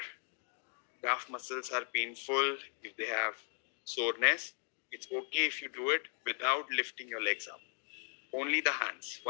calf muscles are painful, if they have soreness, it's okay if you do it without lifting your legs up. Only the hands.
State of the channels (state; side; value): silent; right; 53 dB below the other